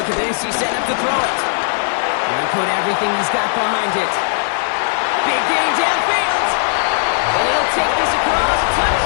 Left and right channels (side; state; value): right; silent; digital silence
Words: at this. He's setting up to throw it. He'll put everything he's got behind it. Big game downfield. And he'll take this across.